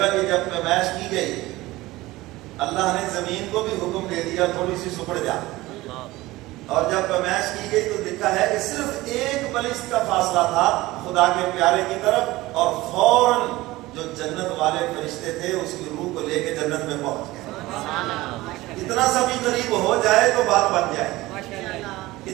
کی جب پیمائش کی گئی، اللہ نے زمین کو بھی حکم دے دیا تھوڑی سی سکڑ جا. اور جب پیمائش کی گئی تو لکھا ہے کہ صرف 1 بلسٹ کا فاصلہ تھا خدا کے پیارے کی طرف، اور فوراً جو جنت والے فرشتے تھے اس کی روح کو لے کے جنت میں پہنچ گئے. اتنا سا بھی قریب ہو جائے تو بات بن جائے گی،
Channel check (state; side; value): quieter; left; 18.8 dB